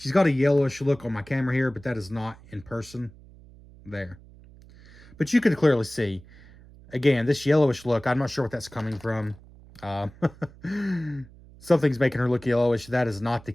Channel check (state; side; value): noise; right; hum, 22 dB below the sound